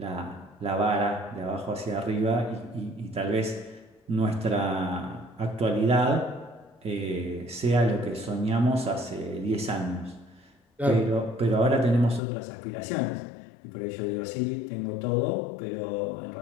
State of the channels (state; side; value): drops out; right; at 12.2 s